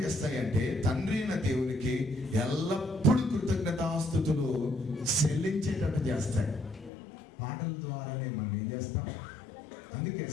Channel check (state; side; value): drops out; right; at 6.9 s